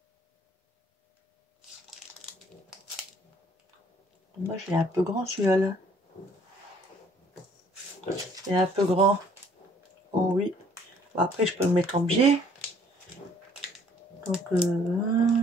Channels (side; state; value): both; normal; correlation 0.60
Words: Moi, je l'ai un peu grand celui-là. Là. Il est un peu grand. Oh oui. Après, je peux le mettre en biais. Donc,